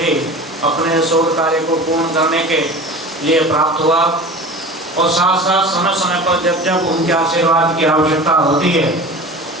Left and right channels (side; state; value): both; normal; correlation 0.36